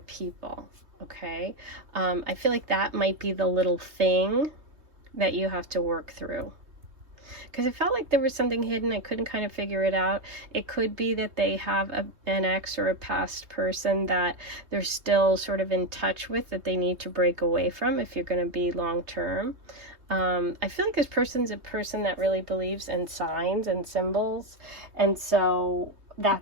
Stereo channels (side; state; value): left; late; 3.2 ms